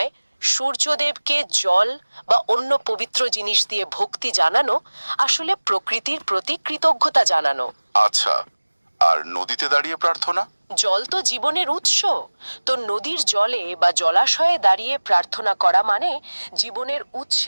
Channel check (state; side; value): inverted; both; correlation -1.00